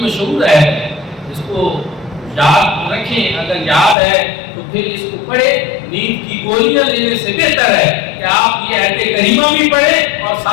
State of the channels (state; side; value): drops out; right; at 4.0 s